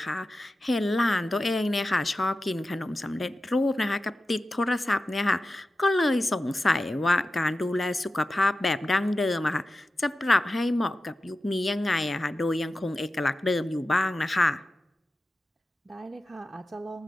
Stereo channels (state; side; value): normal; both; correlation 0.93